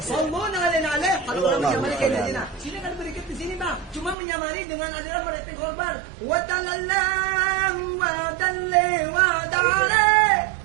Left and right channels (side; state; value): left; drops out; at 4.2 s